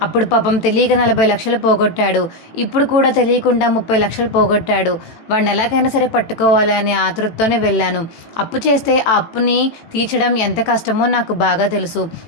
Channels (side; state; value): right; late; 18 ms